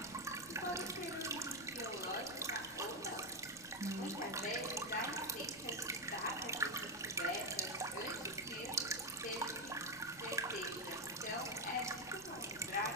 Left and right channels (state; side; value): noise; left; rumble, 22 dB below the sound